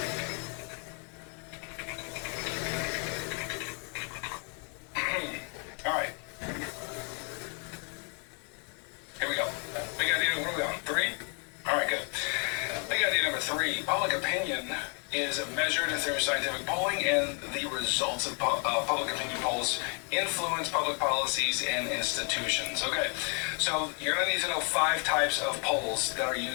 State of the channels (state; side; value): quieter; right; 38.3 dB